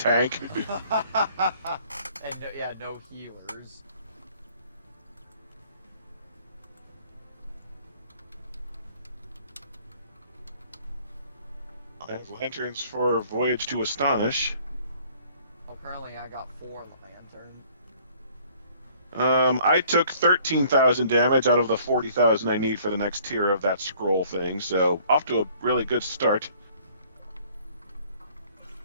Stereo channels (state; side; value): inverted; both; correlation -0.58